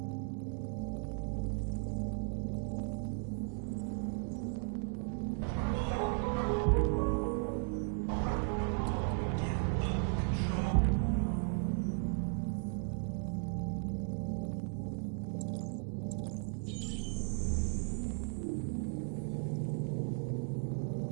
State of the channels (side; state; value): left; silent; 54 dB below the other